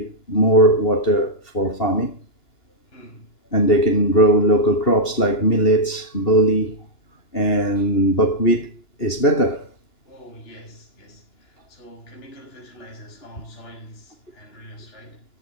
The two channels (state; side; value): late; right; 2.9 ms